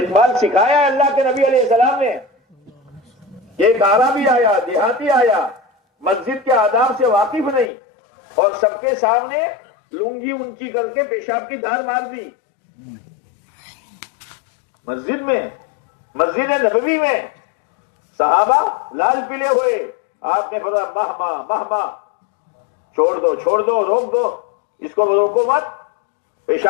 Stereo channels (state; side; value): drops out; right; at 7.7 s